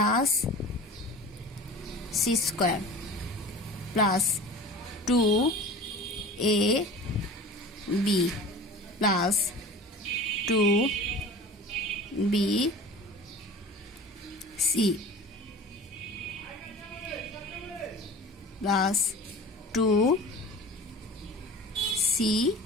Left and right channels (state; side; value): normal; both; correlation 0.39